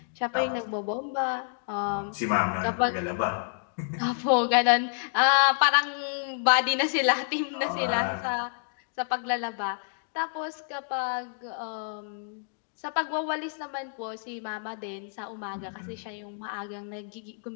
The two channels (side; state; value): right; silent; digital silence